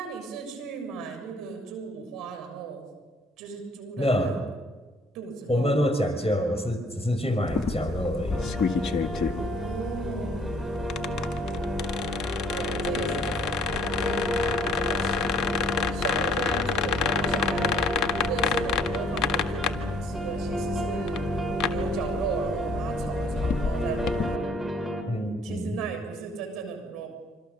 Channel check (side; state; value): both; normal; correlation 0.61